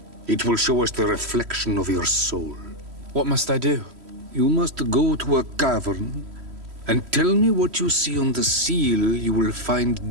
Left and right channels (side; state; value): left; late; 3.1 ms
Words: It will show us the reflection of your soul. What must I do? You must go to a cavern and tell me what you see on the seal you will